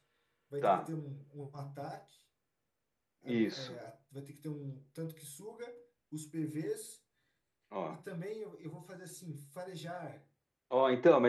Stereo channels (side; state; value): both; identical; correlation 1.00